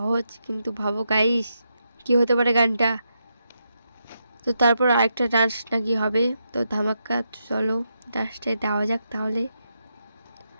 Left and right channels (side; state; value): both; inverted; correlation -0.83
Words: কিন্তু ভাবো গাইস কি হতে পারে গানটা। তো তারপর আরেকটা ডান্স নাকি হবে, তো ধামাকা। চলো ডান্সটাই দেওয়া যাক তাহলে।